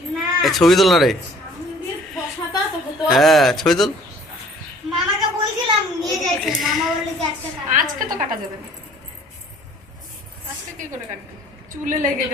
ছবি তোল না রে। হ্যাঁ ছবি তোল। মামাকে বলছিলাম নিয়ে যাইতে, মামা বলল যে আজকে কাটবো। আজকে তো কাটা যাবে না, আজকে কি করে কাটবে, চুলে লেগে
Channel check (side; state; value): both; normal; correlation 0.53